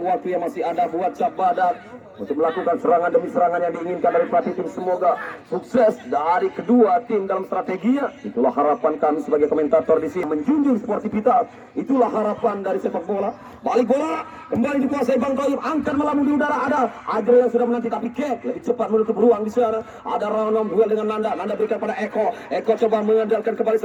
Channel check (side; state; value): both; identical; correlation 1.00